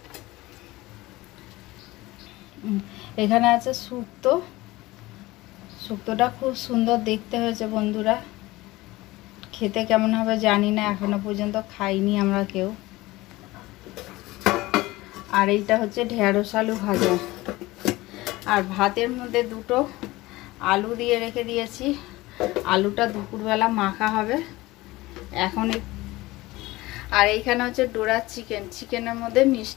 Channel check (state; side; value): quieter; right; 19.5 dB